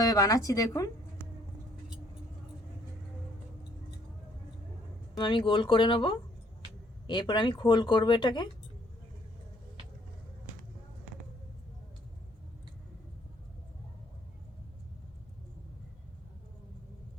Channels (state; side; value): normal; both; correlation 0.64